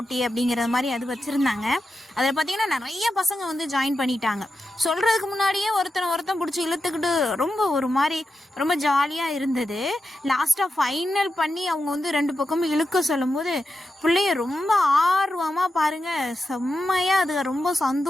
அப்படிங்கிற மாதிரி அது வச்சுருந்தாங்க. அதில் பார்த்திங்கன்னா நிறைய பசங்க ஜாயின் பண்ணிட்டாங்க. சொல்கிறதுக்கு முன்னாடியே ஒருத்தன் பிடிச்சி இழுத்துக்கிட்டு ரொம்ப ஒரு மாதிரி ரொம்ப ஜாலியாக இருந்தது. லாஸ்ட்டாக ஃபைனல் பண்ணி அவங்க 2 பக்கமும் இழுக்க சொல்லும்போது பிள்ளைய ரொம்ப ஆர்வமாக பாருங்கள் செம்மையாக அது ரொம்ப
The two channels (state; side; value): normal; both; correlation 0.89